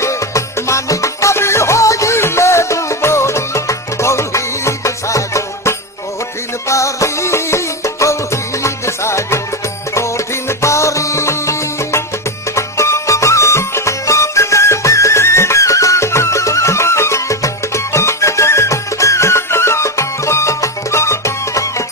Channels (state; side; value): normal; both; correlation 0.12